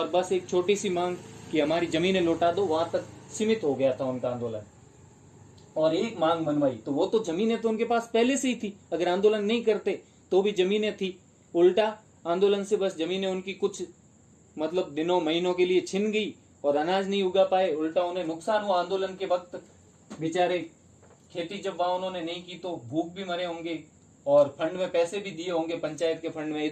बस एक छोटी सी मांग कि हमारी जमीनें लौटा दो, वहां तक सीमित हो गया था उनका आंदोलन। और एक मांग मनवाई, तो वो तो जमीनें तो उनके पास पहले से ही थी, अगर आंदोलन नहीं करते तो भी जमीनें थी। उल्टा आंदोलन से बस जमीनें उनकी कुछ मतलब दिनों महीनों के लिए छिन गई और अनाज नहीं उगा पाए, उल्टा उन्हें नुकसान हुआ। आंदोलन के वक्त बेचारे खेती जब वहां उन्होंने नहीं की तो भूख भी मरे होंगे और फंड में पैसे भी दिए होंगे, पंचायत के फंड में,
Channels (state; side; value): identical; both; correlation 1.00